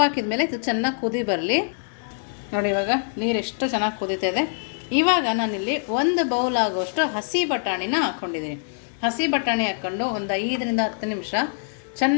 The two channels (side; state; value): right; silent; digital silence